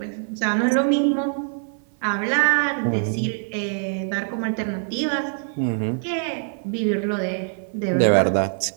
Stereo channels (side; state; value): left; silent; 57 dB below the other